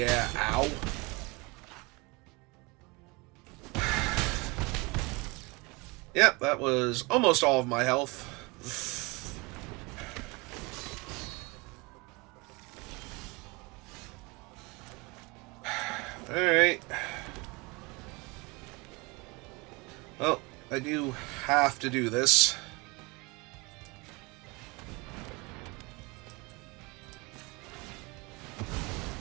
ow. Yep, that was almost all of my health. Alright. Well, I do have to do this.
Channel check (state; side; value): quieter; left; 26.2 dB